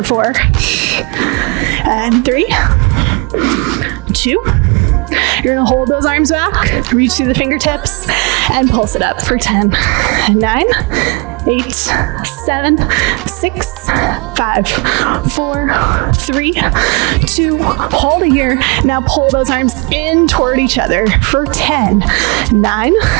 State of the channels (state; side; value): quieter; left; 29.8 dB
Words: 4. And 3, 2. You're gonna hold those arms back, reach through the fingertips, and pulse it up for 10, 9, 8, 7, 6, 5, 4, 3, 2, hold it here. Now pull those arms in toward each other for 10, 9,